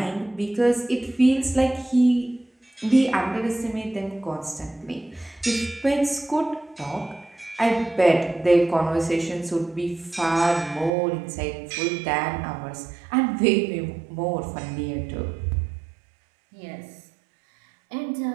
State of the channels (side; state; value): left; drops out; at 10.9 s